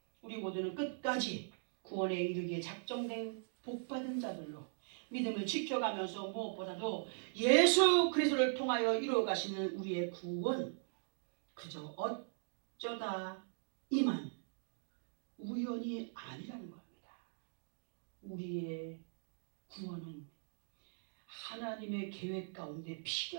우리 모두는 끝까지 구원에 이르기에 작정된 복받은 자들로 믿음을 지켜가면서 무엇보다도 예수 그리스도를 통하여 이루어 가시는 우리의 구원, 그저 어쩌다 이만 우연이 아니라는 겁니다. 우리의 구원은 하나님의 계획 가운데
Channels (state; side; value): silent; left; digital silence